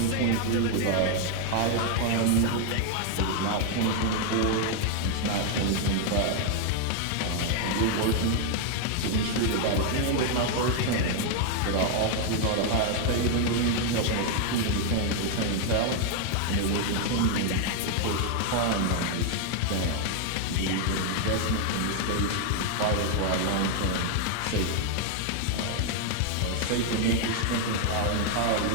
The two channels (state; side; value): different; both; correlation 0.00